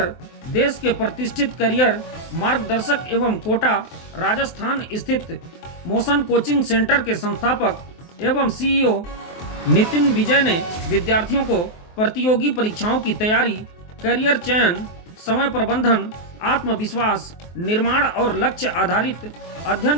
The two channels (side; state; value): right; late; 23 ms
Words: देश के प्रतिष्ठित करियर मार्गदर्शक एवं कोटा राजस्थान स्थित मोशन कोचिंग सेंटर के संस्थापक एवं सीईओ नितिन विजय ने विद्यार्थियों को प्रतियोगी परीक्षाओं की तैयारी, करियर चयन, समय प्रबंधन, आत्मविश्वास निर्माण और लक्ष्य आधारित अध्ययन